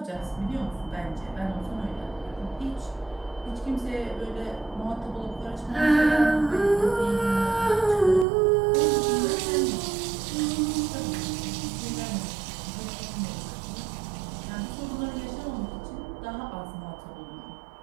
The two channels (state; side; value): drops out; left; at 8.2 s